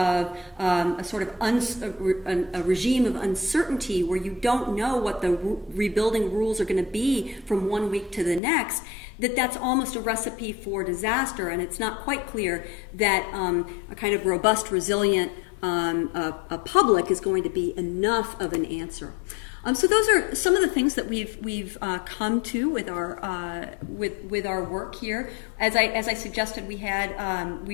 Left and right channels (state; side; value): drops out; right; at 8.4 s